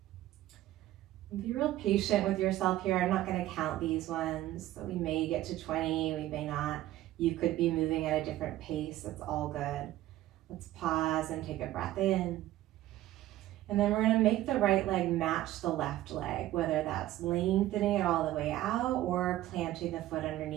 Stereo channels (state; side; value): quieter; left; 14.8 dB